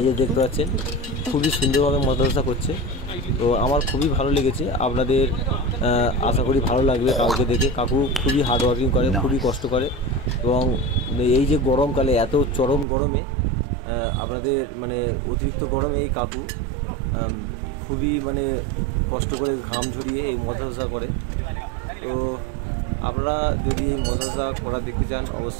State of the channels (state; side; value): drops out; left; at 12.9 s